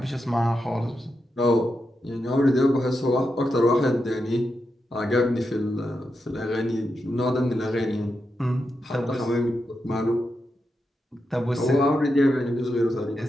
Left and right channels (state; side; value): normal; both; correlation 0.86